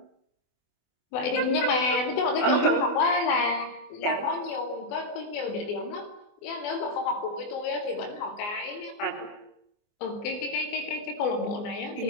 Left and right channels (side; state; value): right; late; 24 ms